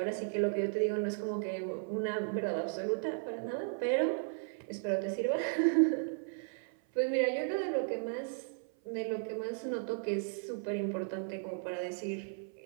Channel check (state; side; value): silent; left; 54 dB below the other